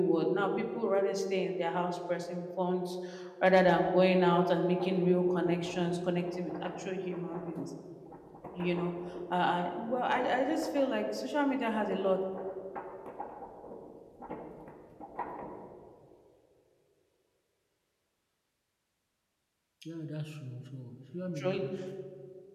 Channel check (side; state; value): both; identical; correlation 1.00